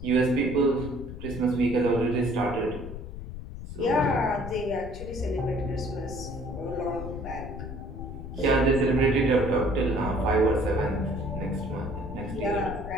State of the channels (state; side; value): noise; left; rumble, 10 dB below the sound